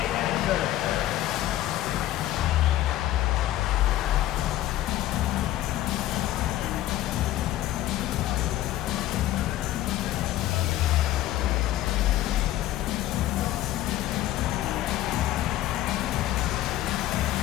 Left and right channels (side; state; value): right; quieter; 14.3 dB